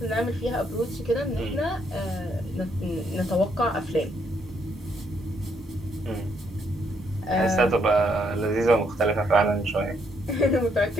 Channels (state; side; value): normal; both; correlation 0.73